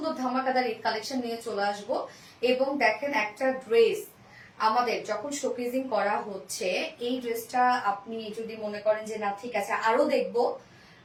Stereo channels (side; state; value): both; identical; correlation 1.00